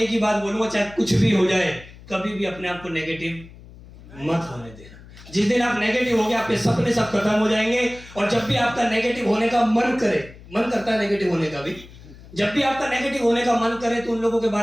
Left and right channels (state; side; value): noise; left; hum, 20 dB below the sound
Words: एक ही बात बोलूंगा, चाहे कुछ भी हो जाए, कभी भी अपने आप को नेगेटिव मत होने देना। जिस दिन आप नेगेटिव हो गए, आपके सपने सब खत्म हो जाएंगे। और जब भी आपका नेगेटिव होने का मन करता है नेगेटिव होने का भी, जब भी आपका नेगेटिव होने का मन करे तो उन लोगों के